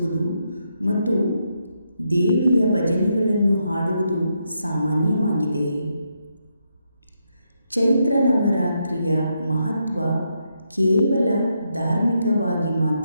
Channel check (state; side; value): inverted; both; correlation -0.80